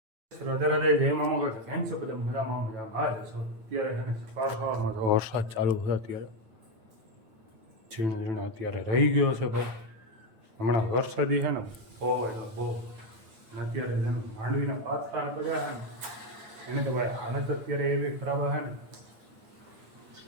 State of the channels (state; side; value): late; left; 9.0 ms